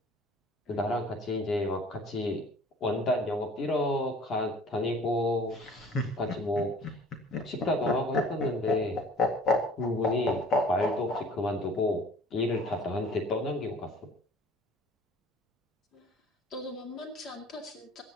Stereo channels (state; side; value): normal; both; correlation 0.49